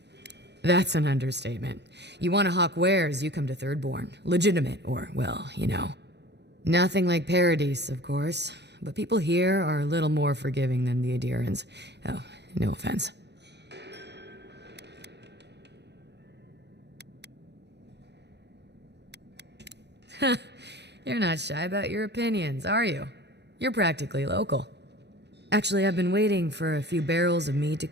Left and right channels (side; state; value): left; late; 0.50 ms